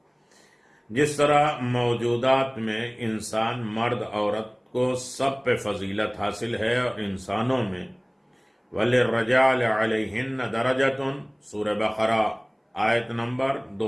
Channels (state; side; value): identical; both; correlation 1.00